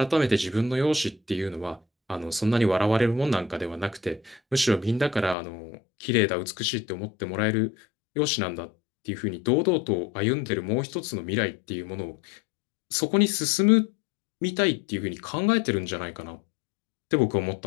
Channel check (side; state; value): right; drops out; at 5.4 s